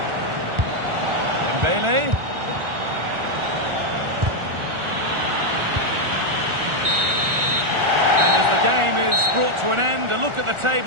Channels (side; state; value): left; late; 1.4 ms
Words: Dembele. And as the game is brought to an end, a look at the